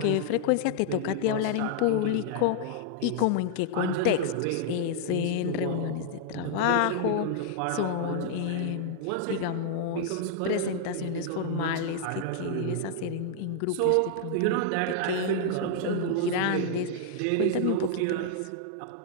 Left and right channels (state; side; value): different; both; correlation -0.01